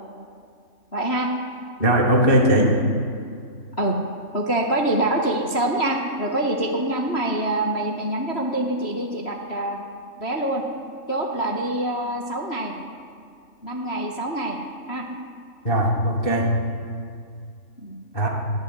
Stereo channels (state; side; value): late; right; 3.0 ms